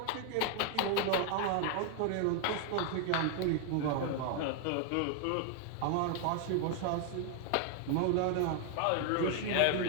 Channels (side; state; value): both; different; correlation 0.00